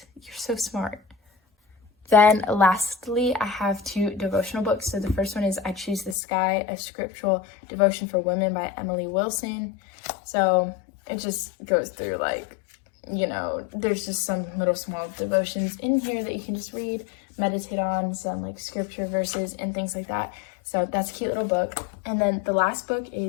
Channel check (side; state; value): right; drops out; at 6.2 s